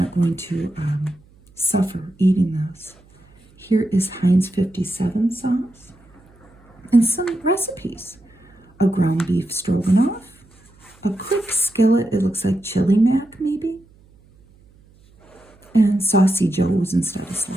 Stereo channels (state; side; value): noise; right; hum, 29 dB below the sound